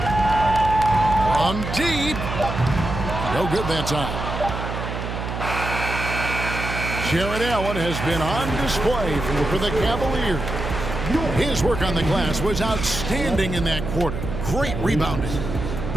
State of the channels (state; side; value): noise; right; hum, 5 dB below the sound